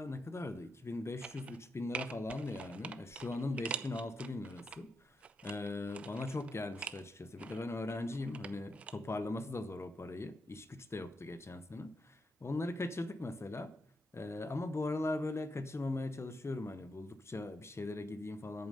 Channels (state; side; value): normal; both; correlation 0.83